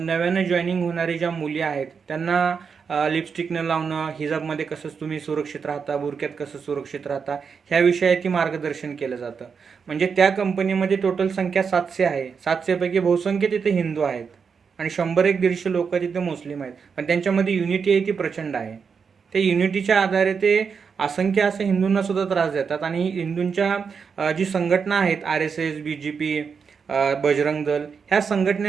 जॉईनिंग होणारी ज्या मुली आहेत त्यांना लिपस्टिक न लावणं, हिजाबमध्ये कसं तुम्ही सुरक्षित राहता, बुरक्यात कसं सुरक्षित राहता, ह्या विषयाची मार्गदर्शन केलं जातं. म्हणजे त्या कंपनीमध्ये टोटल संख्या 700 आहे. 700 पैकी बहुसंख्य तिथे हिंदू आहेत आणि 100-150 लोक तिथे मुस्लिम आहेत. पण त्यांच्यामध्ये युनिटी आहे ती प्रचंड आहे. त्या युनिटीच्या आधारे ते असंख्य असे हिंदूंना सुद्धा त्रास देतात आणि हिंदूंच्या जी संघटना आहेत, RSS, BJP, बजरंग दल, ह्या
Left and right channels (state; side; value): quieter; left; 6.0 dB